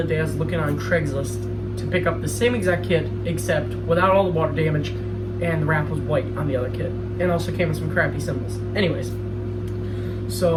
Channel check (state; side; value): identical; both; correlation 1.00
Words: other day I was looking on Craigslist to pick up the same exact kit except without all the water damage, and the wrap was white on the other kit. And also came with some crappy symbols. Anyways,